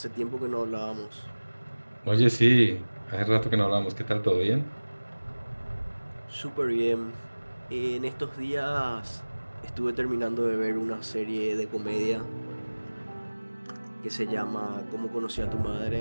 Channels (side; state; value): both; inverted; correlation -1.00